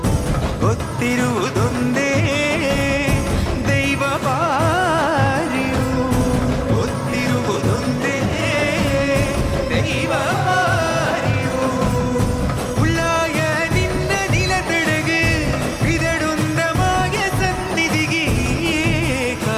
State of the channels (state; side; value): identical; both; correlation 1.00